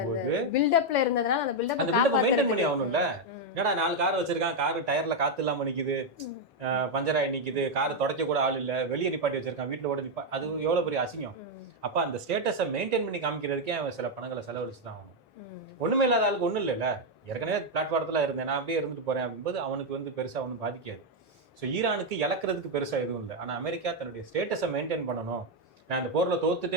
பில்டப்ல இருந்ததுனால அந்த பில்டப்பை மெயின்டைன் பண்ணி ஆகணும்ல. என்னடா 4 கார் வச்சிருக்கான், காரு டயர்ல காத்து இல்லாம நிக்குது, பஞ்சராய் நிக்குது, கார் துடைக்க கூட ஆள் இல்ல, வெளியே நிப்பாட்டி வச்சிருக்கான், வீட்டுல கூட அது எவ்வளவு பெரிய அசிங்கம். அப்ப அந்த ஸ்டேட்டஸை மெயின்டைன் பண்ணி காமிக்கிறதுக்கே அவன் சில பணங்களை செலவழிச்சு தான் ஆகணும். ஒண்ணுமே இல்லாத ஆளுக்கு ஒண்ணும் இல்லைல்ல. ஏற்கனவே பிளாட்ஃபாரத்துல இருந்தேன், நான் அப்படியே இருந்துட்டு போறேன் அப்படின்போது அவனுக்கு வந்து பெருசா ஒன்றும் பாதிக்காது. ஸோ ஈரானுக்கு இழக்கிறதுக்கு பெருசா எதுவும் இல்லை. ஆனா அமெரிக்கா தன்னுடைய ஸ்டேட்டஸை மெயின்டைன் பண்ணணும், நான் இந்த போர்ல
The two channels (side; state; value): both; normal; correlation 0.02